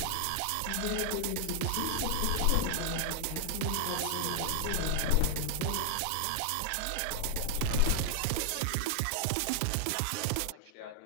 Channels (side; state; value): both; different; correlation 0.00